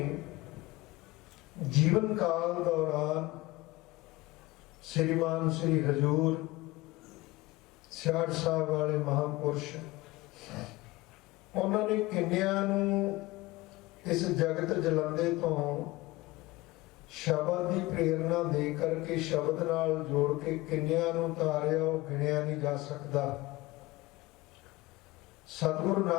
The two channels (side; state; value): right; quieter; 20.4 dB